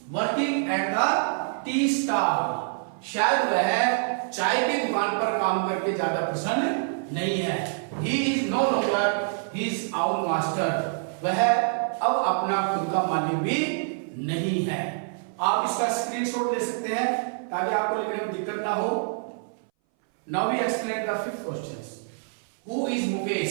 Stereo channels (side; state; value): left; silent; 59 dB below the other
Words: working at the tea stall, शायद वह चाय की दुकान पर काम करके ज्यादा प्रसन्न नहीं है। He is no longer his own master, वह अब अपना खुद का मालिक भी नहीं है। आप इसका स्क्रीनशॉट ले सकते हैं ताकि आपको लिखने में दिक्कत ना हो। Now we explain the fifth questions. Who is